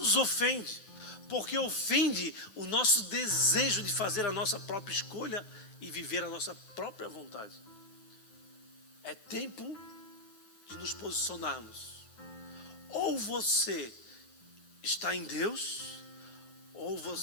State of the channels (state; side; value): late; right; 9.9 ms